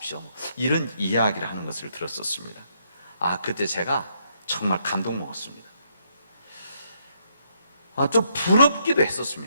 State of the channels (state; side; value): inverted; both; correlation -0.74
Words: 이런 이야기를 하는 것을 들었었습니다. 그때 제가 정말 감동 먹었습니다. 좀 부럽기도